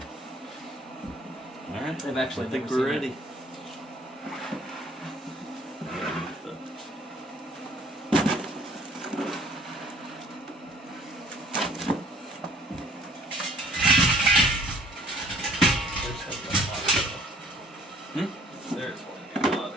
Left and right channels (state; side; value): normal; both; correlation 0.56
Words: Alright, I've actually I think never we're seen it. ready. There's one. A lot